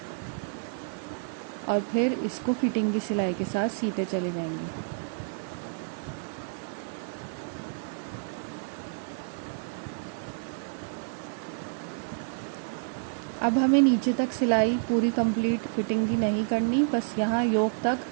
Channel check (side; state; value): left; silent; 58 dB below the other